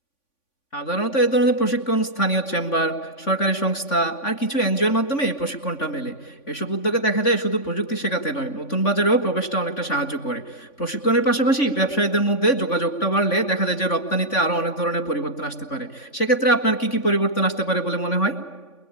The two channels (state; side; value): late; right; 3.5 ms